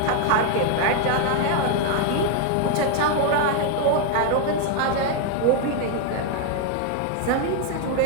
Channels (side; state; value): both; different; correlation 0.01